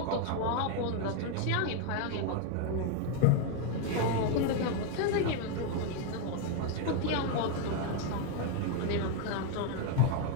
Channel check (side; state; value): both; different; correlation 0.01